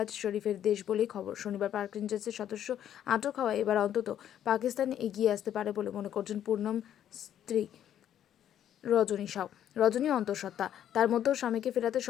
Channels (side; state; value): right; quieter; 10.5 dB